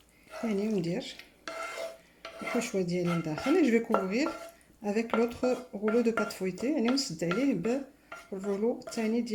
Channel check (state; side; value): identical; both; correlation 1.00